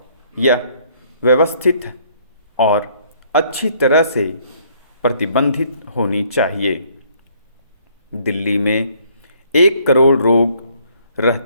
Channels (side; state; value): both; inverted; correlation -0.63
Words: यह व्यवस्थित और अच्छी तरह से प्रबंधित होनी चाहिए। दिल्ली में 1 करोड़ लोग